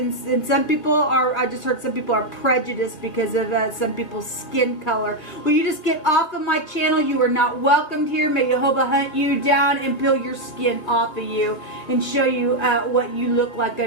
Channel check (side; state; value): right; late; 1.7 ms